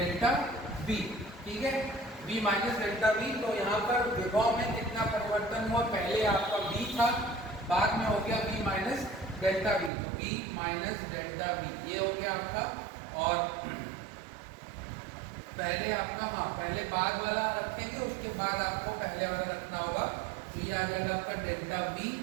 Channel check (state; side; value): drops out; left; at 9.9 s